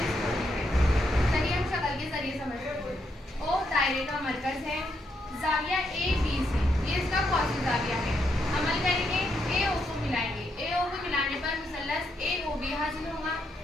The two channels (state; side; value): normal; both; correlation 0.79